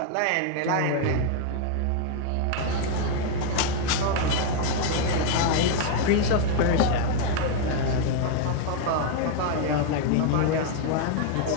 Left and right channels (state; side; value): different; both; correlation 0.00